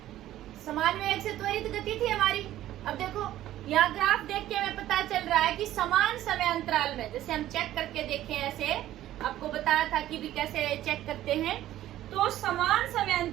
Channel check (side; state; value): left; quieter; 13.6 dB